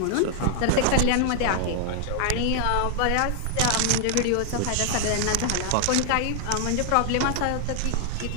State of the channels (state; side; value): different; both; correlation 0.00